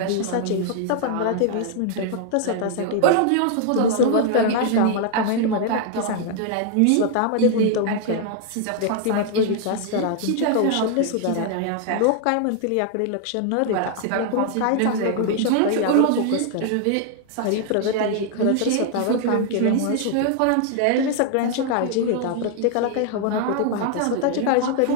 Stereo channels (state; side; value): different; both; correlation 0.00